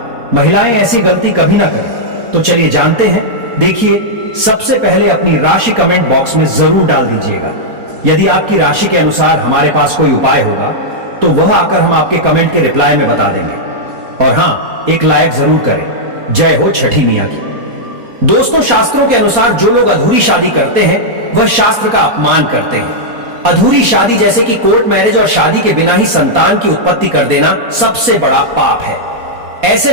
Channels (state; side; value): late; left; 4.2 ms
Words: महिलाएं ऐसी गलती कभी ना करें। तो चलिए जानते हैं। देखिए, सबसे पहले अपनी राशि कमेंट बॉक्स में जरूर डाल दीजिएगा। यदि आपकी राशि के अनुसार हमारे पास कोई उपाय होगा तो वह आकर हम आपके कमेंट के रिप्लाई में बता देंगे। और हां, एक लाइक जरूर करें। जय हो छठी मैया की। दोस्तों, शास्त्रों के अनुसार जो लोग अधूरी शादी करते हैं वह शास्त्र का अपमान करते हैं। अधूरी शादी जैसे कि कोर्ट मैरिज और शादी के बिना ही संतान की उत्पत्ति कर देना सबसे बड़ा पाप है। ऐसे